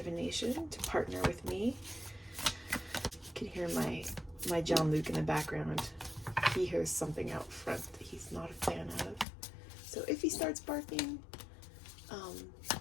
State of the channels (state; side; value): drops out; right; at 9.2 s